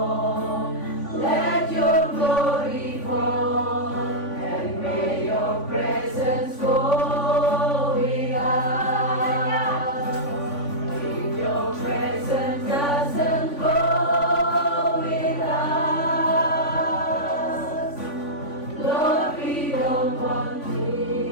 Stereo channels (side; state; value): right; late; 3.5 ms